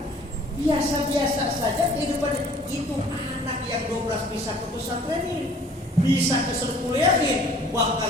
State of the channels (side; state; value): both; normal; correlation 0.53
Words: Biasa-biasa saja kehidupan itu. Anak yang 12 bisa ke pesantren ini, bisa ke sekuliahin,